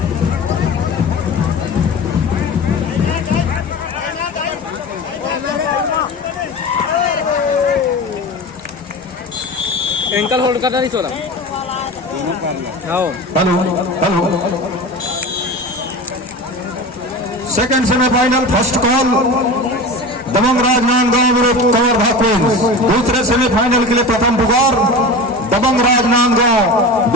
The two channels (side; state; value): both; normal; correlation 0.31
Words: एंकल होल्ड करना नहीं चला। Hello second semifinal first call Dabang Rajnandgaon विरुद्ध कवर्धा क्वींस। दूसरे सेमीफाइनल के लिए प्रथम पुकार दबंग राजनांदगांव